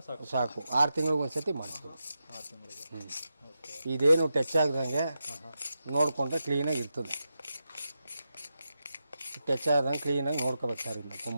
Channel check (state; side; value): inverted; both; correlation -0.88